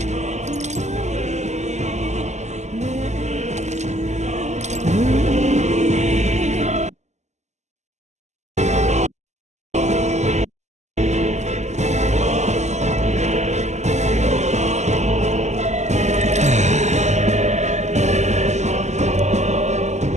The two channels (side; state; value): left; late; 0.33 ms